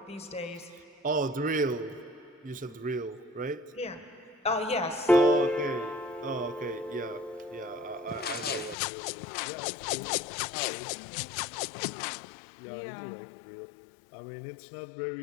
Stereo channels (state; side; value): drops out; right; at 8.8 s